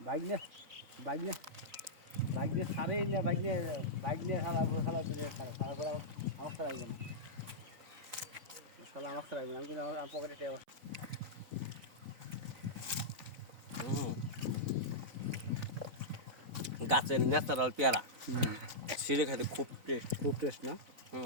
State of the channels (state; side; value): late; left; 3.9 ms